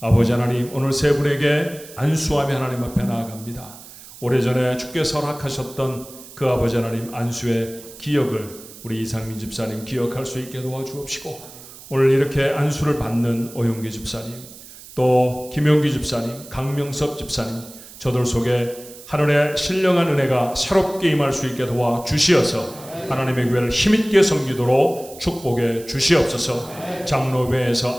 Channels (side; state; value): right; noise; hiss, 18 dB below the sound